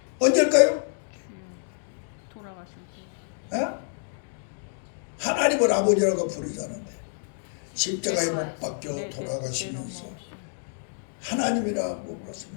언제일까요? 돌아가시고. 하나님을 아버지라고 부르지 않은데 십자가에 못 박혀 돌아가시면서 하나님이라고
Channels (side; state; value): right; silent; digital silence